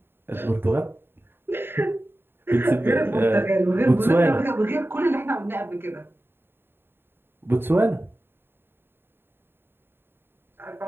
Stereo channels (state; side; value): late; left; 0.11 ms